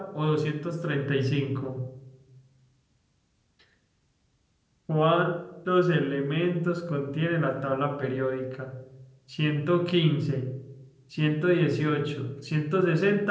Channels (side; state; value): both; identical; correlation 1.00